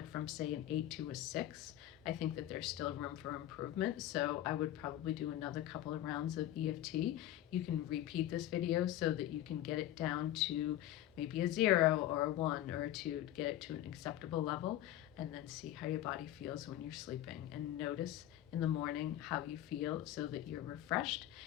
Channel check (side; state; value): right; quieter; 13.2 dB